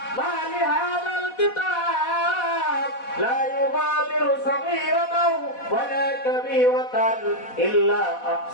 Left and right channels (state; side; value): late; right; 4.1 ms